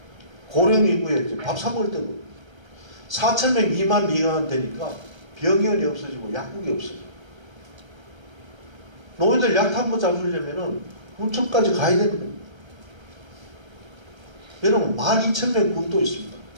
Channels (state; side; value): late; left; 1.3 ms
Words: 고령 인구에 이제 밥 사 먹을 때도 4,000명 미만 되니까 병원이 없어지고 약국이 없어져. 노인들 약 한 번 잡으려면은 군청까지 가야 되는 겁니다. 여러분 12,000명 군도 있습니다.